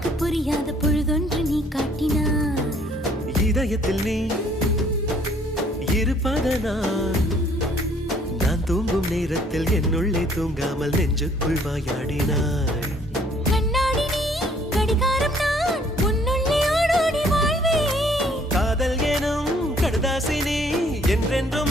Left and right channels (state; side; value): normal; both; correlation 0.61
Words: புரியாத பொழுதொன்று நீ காட்டினாய். இதயத்தில் நீ இருப்பதனால் நான் தூங்கும் நேரத்தில் என்னுள்ளே தூங்காமல் நெஞ்சுக்குள் வாயாடினாய். கண்ணாடி நீ கடிகாரம் நான் உன்னுள்ளே ஓடோடி வாழ்வேன். காதல் எனும் கடுதாசி நீ